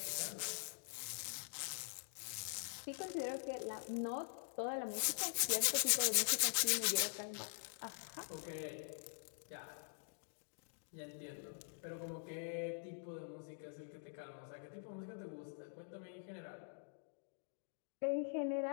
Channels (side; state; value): right; silent; digital silence